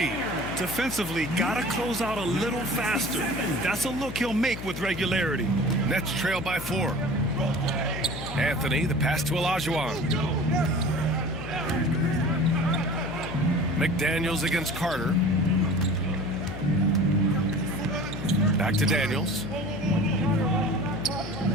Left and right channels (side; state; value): left; noise; hum, 9 dB below the sound